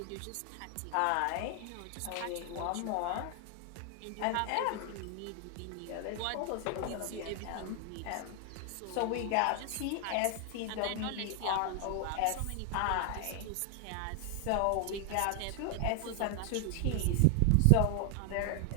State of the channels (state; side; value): different; both; correlation 0.00